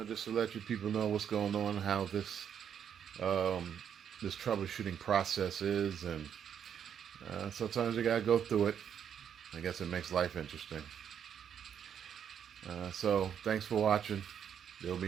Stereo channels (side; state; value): left; quieter; 8.5 dB